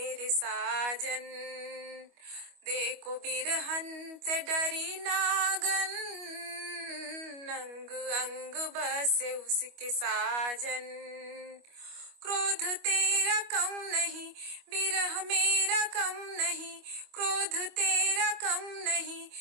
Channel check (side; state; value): left; late; 25 ms